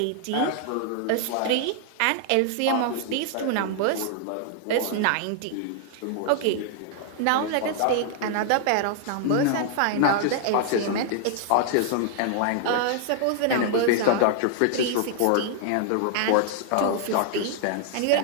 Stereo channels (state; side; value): different; both; correlation -0.01